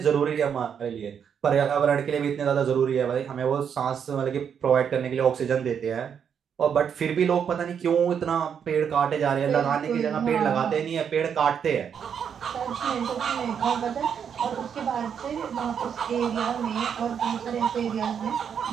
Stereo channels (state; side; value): quieter; left; 7.7 dB